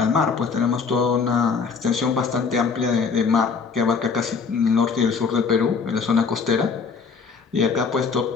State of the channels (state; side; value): quieter; right; 5.4 dB